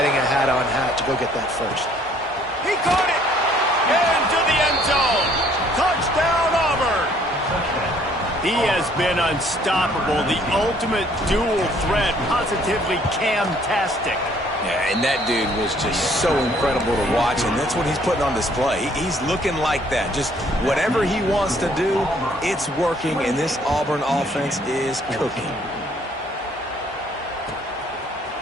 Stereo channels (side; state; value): both; normal; correlation 0.61